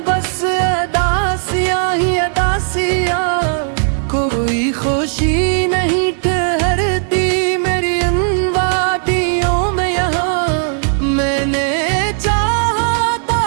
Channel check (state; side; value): silent; left; 68 dB below the other